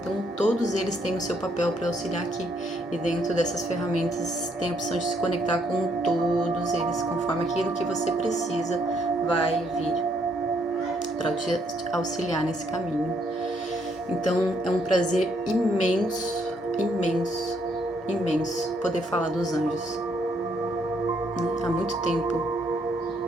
todos eles têm o seu papel para auxiliar aqui, e dentro dessas ferramentas tem a opção de se conectar com todos eles, conforme aquilo que você precisa vai vir para te auxiliar nesse caminho. Então é um prazer imenso, imenso, imenso poder falar dos anjos, né? Há muito tempo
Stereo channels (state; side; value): normal; both; correlation 0.71